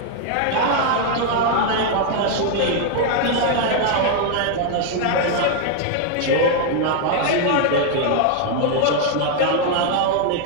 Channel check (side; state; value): both; different; correlation 0.00